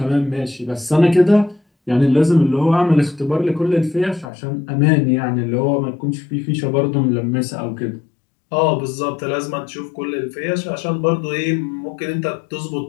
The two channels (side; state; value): right; drops out; at 4.2 s